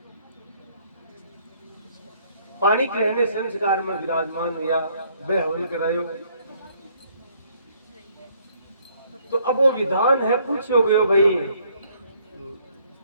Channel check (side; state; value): both; inverted; correlation -0.65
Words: पानी कहने संस्कार में विराजमान हुआ, वह हवन करायो। तो अब वो विधान है, पूछो गयो भाई,